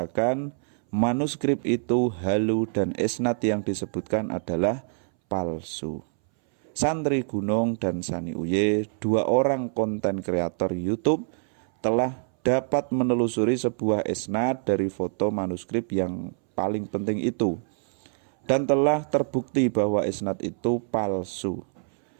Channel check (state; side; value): silent; left; 61 dB below the other